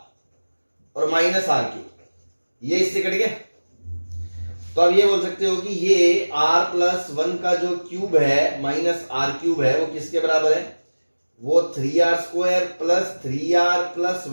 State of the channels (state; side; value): inverted; both; correlation -1.00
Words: और माइनस r क्यूब, ये इससे कट गया। तो अब ये बोल सकते हो कि ये r प्लस 1 का जो क्यूब है माइनस r क्यूब है वो किसके बराबर है? वो 3r square plus 3r plus